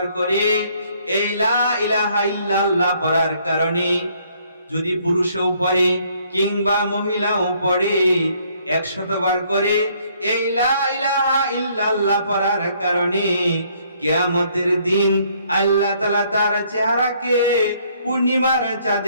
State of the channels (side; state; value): both; inverted; correlation -0.66